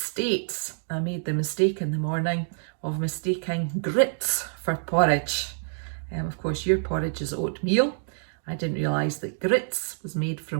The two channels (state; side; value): silent; left; digital silence